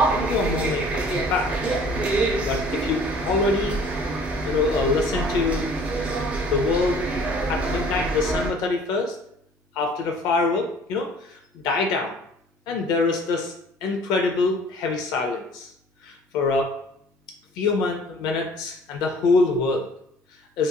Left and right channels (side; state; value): both; normal; correlation 0.51